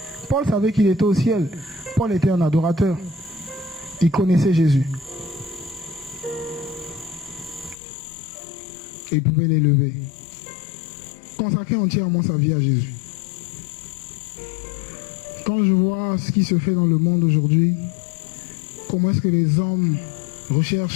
Paul savait qu'il était au ciel. Paul était un adorateur. Il connaissait Jésus. Et il pouvait l'élever. Consacrer entièrement sa vie à Jésus. Quand je vois ce qui se fait dans le monde aujourd'hui, comment est-ce que les hommes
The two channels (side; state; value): right; drops out; at 7.8 s